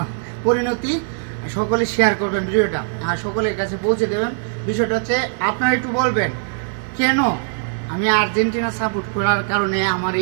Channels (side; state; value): left; silent; digital silence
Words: পরিণতি। সকলে শেয়ার করবেন ভিডিওটা আর সকলের কাছে পৌঁছে দেবেন। বিষয়টা হচ্ছে আপনারা একটু বলবেন কেন আমি আর্জেন্টিনা সাপোর্ট করার কারণে আমার